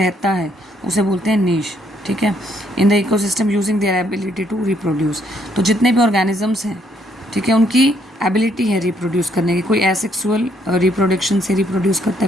है उसे बोलते हैं नीश, ठीक है। In the ecosystem using their ability to reproduce. तो जितने भी ऑर्गेनिजम्स हैं, ठीक है, उनकी एबिलिटी है रिप्रोड्यूस करने की। कोई एसेक्सुअल रिप्रोडक्शन से रिप्रोड्यूस करता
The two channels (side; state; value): both; normal; correlation 0.70